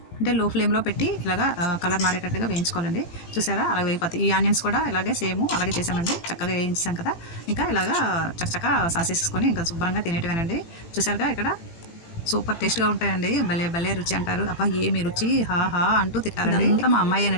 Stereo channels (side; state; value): right; late; 18 ms